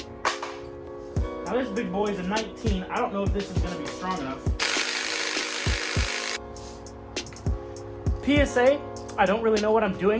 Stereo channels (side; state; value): both; identical; correlation 1.00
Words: Now this big boy is a 19. I don't know if this is going to be strong enough. PSA, I don't really know what I'm